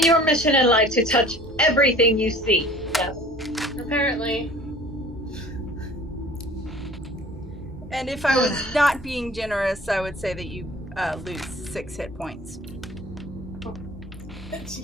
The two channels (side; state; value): both; normal; correlation 0.47